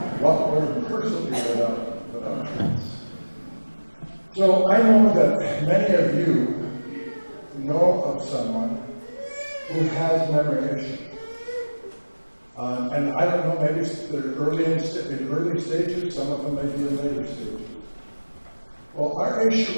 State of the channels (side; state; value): both; inverted; correlation -1.00